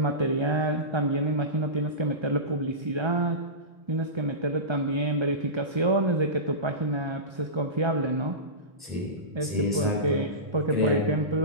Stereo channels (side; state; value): left; late; 1.3 ms